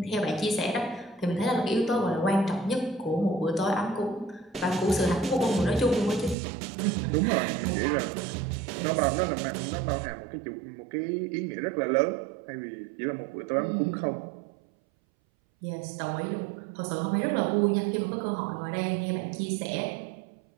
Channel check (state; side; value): drops out; left; at 6.4 s